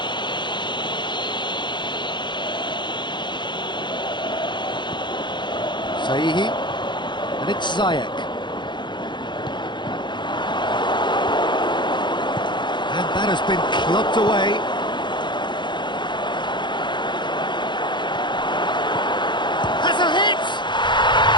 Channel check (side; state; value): right; late; 0.22 ms